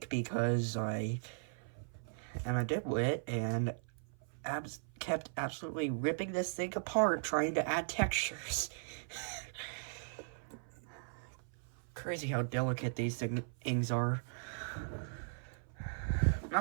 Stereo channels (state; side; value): silent; left; 52 dB below the other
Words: because I am a dipwit and kept absolutely ripping this thing apart trying to add textures. Crazy how delicate these things are.